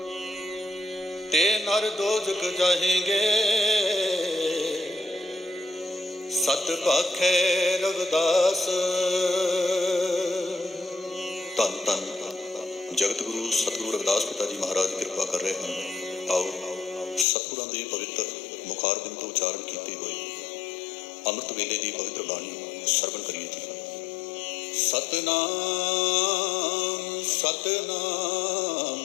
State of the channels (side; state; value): right; drops out; at 17.2 s